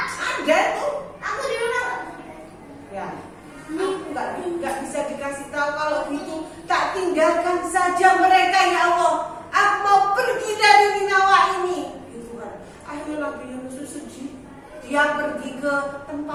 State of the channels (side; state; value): both; identical; correlation 1.00